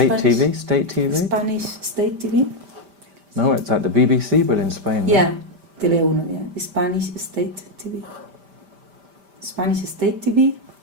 TV? State TV? Spanish state TV? No, it's like the BBC, but in Spain. No? Yeah, Tele1, yeah. The Spanish state TV. Spanish state TV.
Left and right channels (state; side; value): late; left; 5.1 ms